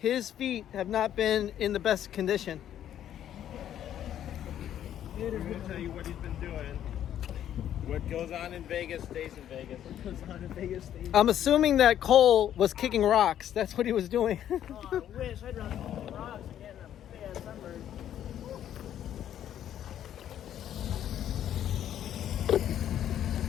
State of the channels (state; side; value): quieter; right; 10.7 dB